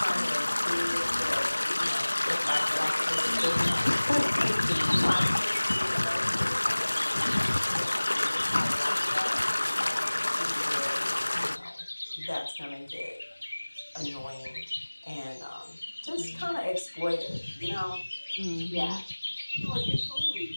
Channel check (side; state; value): both; inverted; correlation -1.00